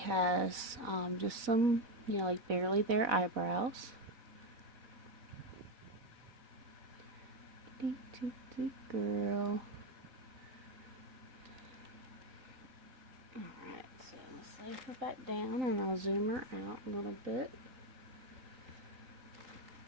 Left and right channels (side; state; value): left; late; 4.0 ms